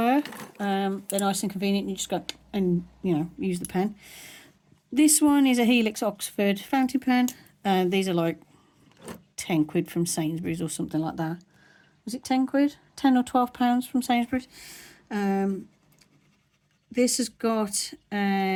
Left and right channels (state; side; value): identical; both; correlation 1.00